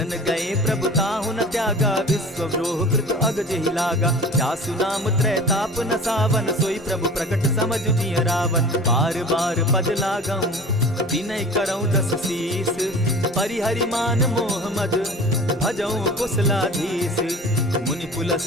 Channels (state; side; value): normal; both; correlation 0.40